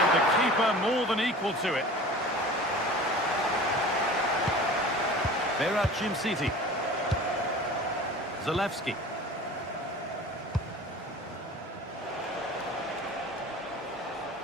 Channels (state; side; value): normal; both; correlation 0.40